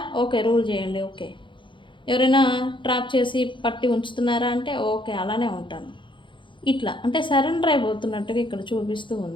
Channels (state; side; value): late; right; 0.24 ms